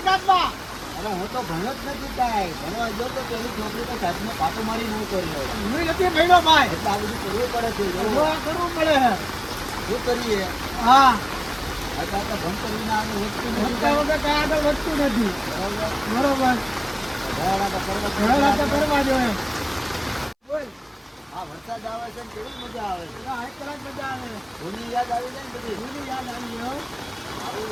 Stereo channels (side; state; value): both; identical; correlation 1.00